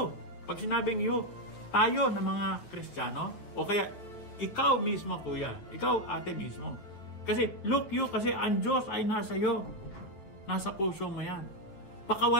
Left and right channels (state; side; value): late; right; 9.2 ms